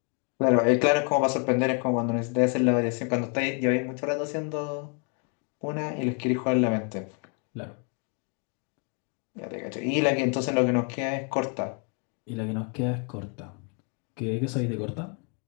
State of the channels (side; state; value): right; quieter; 38.7 dB